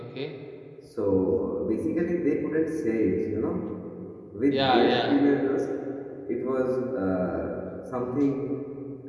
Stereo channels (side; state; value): both; identical; correlation 1.00